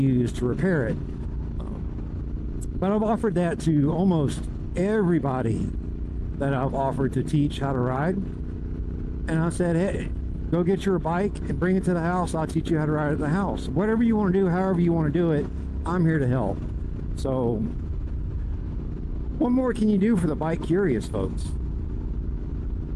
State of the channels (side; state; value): both; identical; correlation 1.00